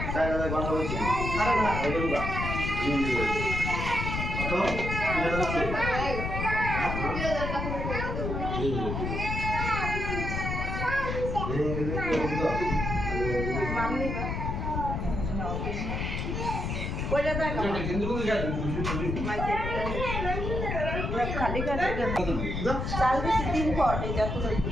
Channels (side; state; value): left; noise; rumble, 3 dB below the sound